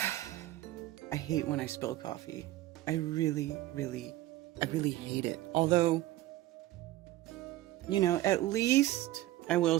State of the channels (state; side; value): quieter; left; 15.8 dB